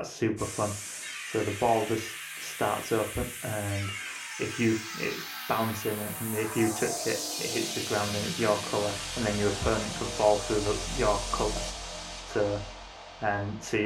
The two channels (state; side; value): identical; both; correlation 1.00